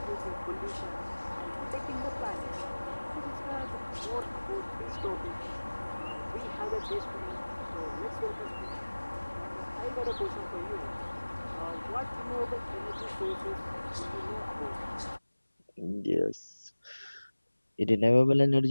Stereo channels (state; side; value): inverted; both; correlation -1.00